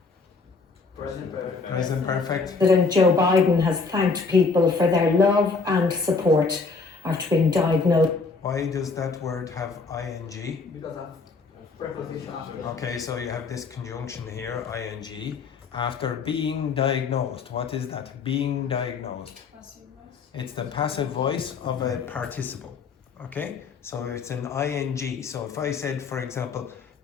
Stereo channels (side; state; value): right; quieter; 4.5 dB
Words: Present perfect. Present perfect. Joe Biden has thanked people for their love and support after being diagnosed. Why does that word have ing? Because of preposition after. Okay, so you have this conjunction here, ing, after being diagnosed. What is that? Being diagnosed. It's the passive voice of a participle. Okay, so it's an ing. So if I said, for example,